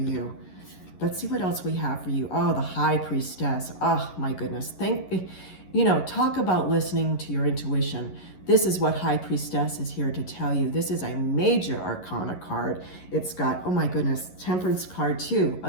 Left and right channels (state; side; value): late; right; 11 ms